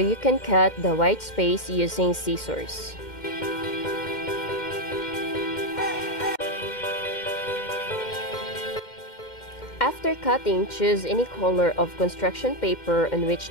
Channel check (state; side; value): late; right; 2.1 ms